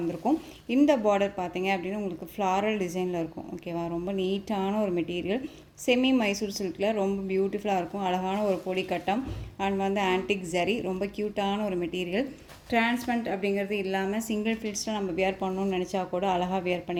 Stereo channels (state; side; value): identical; both; correlation 1.00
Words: இந்த பார்டர் பார்த்தீங்க அப்படின்னா உங்களுக்கு ஃப்ளாரல் டிசைனில் இருக்கும், ஓகேவா? ரொம்ப நீட்டான ஒரு மெட்டீரியல், செமி மைசூர் சில்கில் ரொம்ப பியூட்டிஃபுல்லாக இருக்கும். அழகான ஒரு பொடி கட்டம் அண்ட் வந்து ஆன்டிக் ஜரி, ரொம்ப க்யூட்டான ஒரு மெட்டீரியல். டிரான்ஸ்பரண்ட் அப்படிங்கிறது இல்லாமல் சிங்கிள் ஃபில்ஸில் நம்ம வியர் பண்ணணும்னு நினச்சா கூட அழகாக வியர்